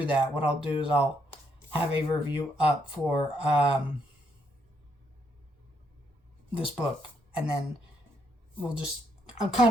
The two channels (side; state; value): both; normal; correlation 0.75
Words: that, what I'll do is I'll have a review up for this book. And then I'm